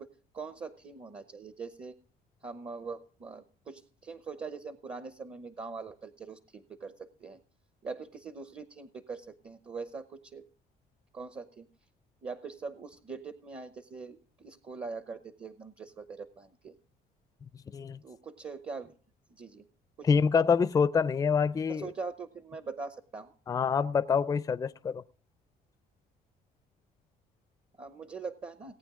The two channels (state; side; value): quieter; right; 4.4 dB